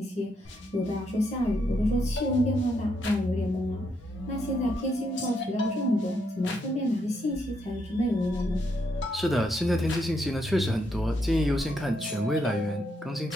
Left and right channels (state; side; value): normal; both; correlation 0.77